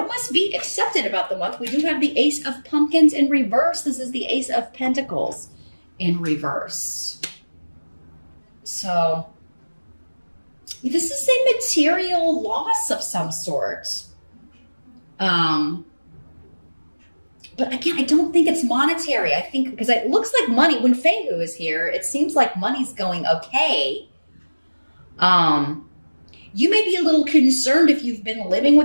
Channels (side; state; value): both; inverted; correlation -1.00